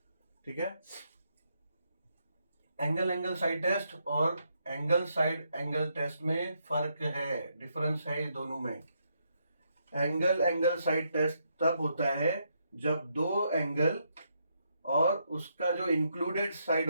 ठीक है, एंगल साइड टेस्ट और एंगल टेस्ट में फर्क है, डिफरेंस है ये दोनों में। एंगल साइड टेस्ट तब होता है जब दो एंगल और उसका जो इंक्लूडेड साइड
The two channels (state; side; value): inverted; both; correlation -0.78